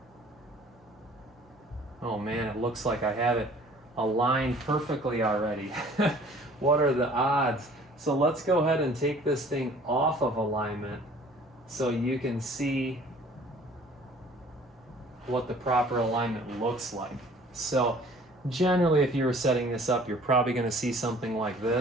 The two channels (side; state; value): both; normal; correlation 0.52